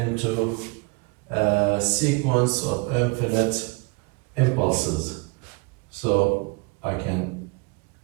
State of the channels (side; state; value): left; quieter; 28.8 dB